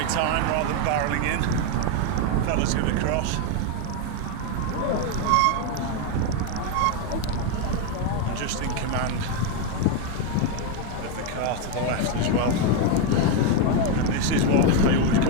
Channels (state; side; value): different; both; correlation 0.02